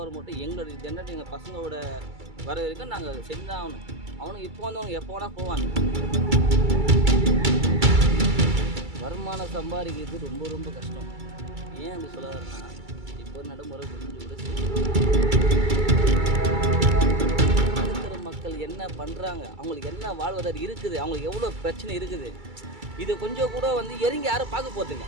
மட்டும் எங்களோட ஜென்ரேட் எங்கள் பசங்களோட வர வரைக்கும் நாங்கள் செஞ்சு தான் ஆகணும். அவனுக்கு இப்போ வந்தவங்க எப்போ வேணால் போவாங்க. வருமானம் சம்பாதிக்கிறது ரொம்ப ரொம்ப கஷ்டம். ஏன் அப்படி சொல்ல வரேன்னா, இப்போ நடைமுறை புரிஞ்சு கூட நடுத்தர மக்கள் என்ன பண்ணுறாங்க, அவங்களுக்கு என்ன வாழ்வதார் இருக்குது, அவங்களுக்கு எவ்வளோ பிரச்சனை இருக்குது, இது கொஞ்சம் கூட வந்து இறங்கி யாரும் பார்க்க போகிறதில்ல.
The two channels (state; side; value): late; left; 2.3 ms